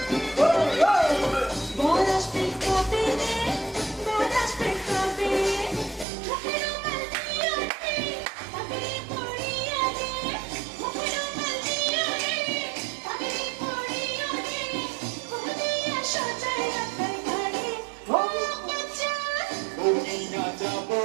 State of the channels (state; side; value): drops out; left; at 6.1 s